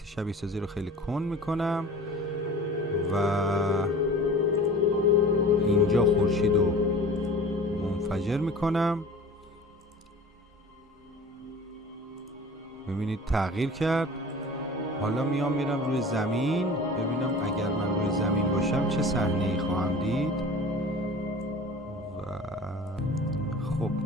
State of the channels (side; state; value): both; normal; correlation 0.41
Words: شبیه سازی رو خیلی کند میکنم و اینجا خورشید رو منفجر میکنم. ببینید تغییر کرد. حالا میرم روی زمین ببینم اگر من روی زمین باشم چه صحنه‌ای خواهم دید. و خب